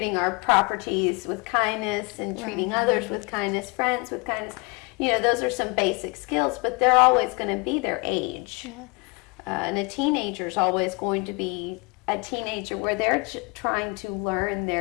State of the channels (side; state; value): right; quieter; 29.0 dB